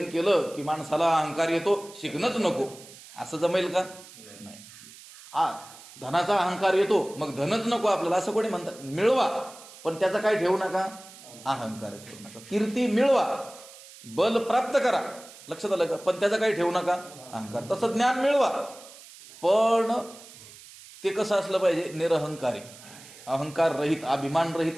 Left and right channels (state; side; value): noise; right; hiss, 19 dB below the sound